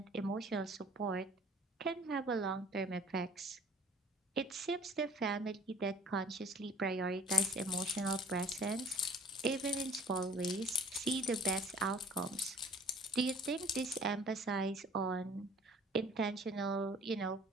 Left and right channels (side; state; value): both; normal; correlation 0.52